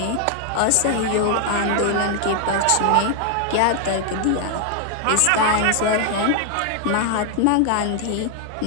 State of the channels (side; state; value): both; different; correlation 0.00